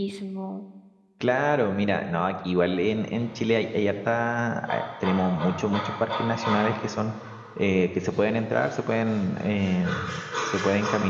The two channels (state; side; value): identical; both; correlation 1.00